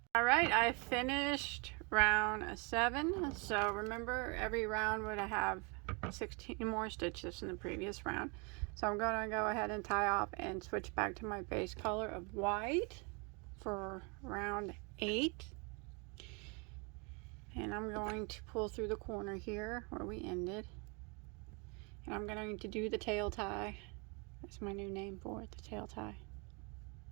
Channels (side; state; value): left; quieter; 32.2 dB